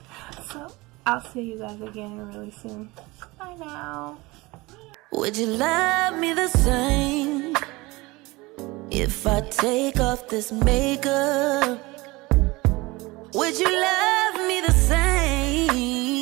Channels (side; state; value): left; quieter; 22.3 dB